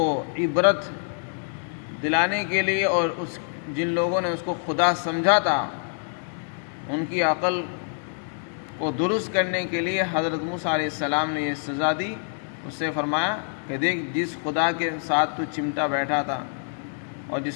عبرت دلانے کے لیے اور جن لوگوں نے اس کو خدا سمجھا تھا ان کی عقل کو درست کرنے کے لیے حضرت موسیٰ علیہ السلام نے یہ سزا دی۔ اس سے فرمایا کہ دیکھ، جس خدا کے ساتھ تو چمٹا بیٹھا تھا اور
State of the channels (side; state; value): right; silent; digital silence